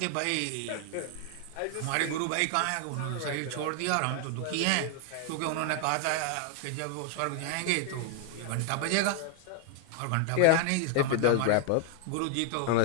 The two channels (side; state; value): both; different; correlation 0.00